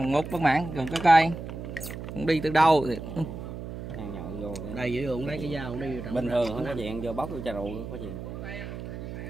ngốt bất mãn còn cái cây. Không đi từ đâu thì Ăn nhậu vô. đây giữ luôn lấy cái dao đi. Bình thường không có chuyện vô bóc vô trà rượu có chuyện.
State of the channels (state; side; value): noise; right; hum, 8 dB below the sound